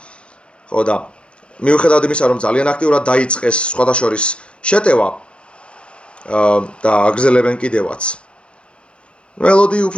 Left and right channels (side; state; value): right; late; 0.057 ms